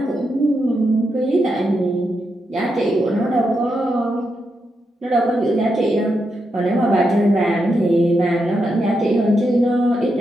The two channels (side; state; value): both; normal; correlation 0.84